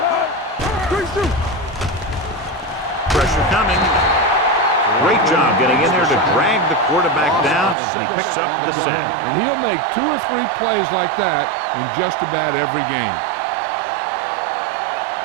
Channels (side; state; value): left; drops out; at 7.8 s